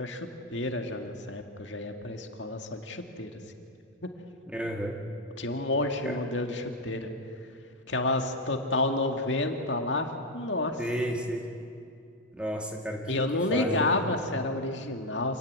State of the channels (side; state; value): both; normal; correlation 0.05